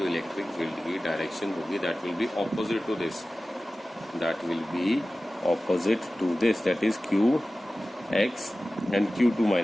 इलेक्ट्रिक फील्ड की डायरेक्शन होगी that will be opposite to this, that is Q, X and Q2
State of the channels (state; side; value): normal; both; correlation 0.96